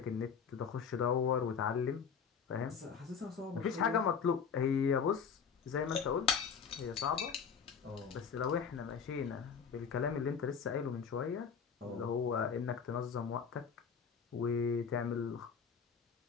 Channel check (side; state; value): right; quieter; 6.5 dB